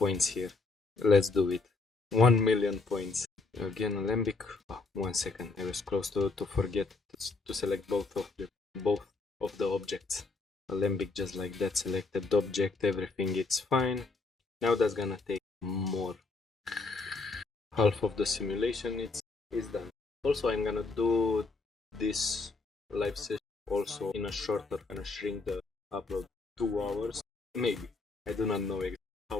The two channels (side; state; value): right; quieter; 3.7 dB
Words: here. Let's do it. 1 million points. Again, Alembic. Oh, 1 second. I was close to forget to select both of the objects. Alembic, just like that. Selected object. Everything it's fine. Now that's gonna take more. Half of the simulation is done. Also, I'm gonna do this live session also in a shorter, gonna shrink the upload 2 hours. Maybe. I do not know exactly how